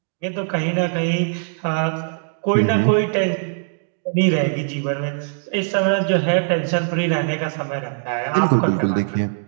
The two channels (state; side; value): silent; left; digital silence